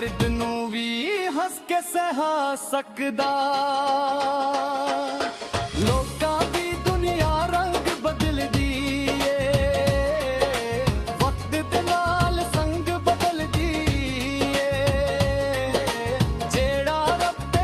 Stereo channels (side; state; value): both; identical; correlation 1.00